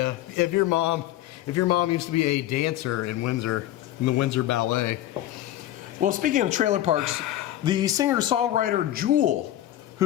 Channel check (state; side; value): quieter; right; 13.5 dB